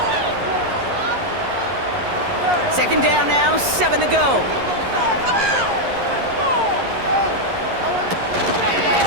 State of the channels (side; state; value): left; late; 11 ms